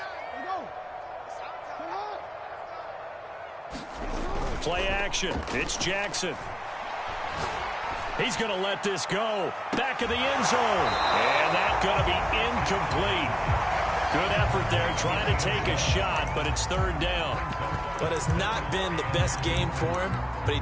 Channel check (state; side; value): identical; both; correlation 1.00